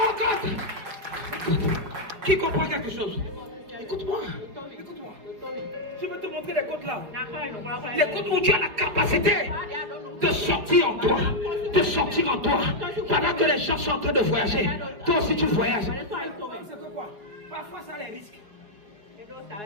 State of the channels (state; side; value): late; left; 4.9 ms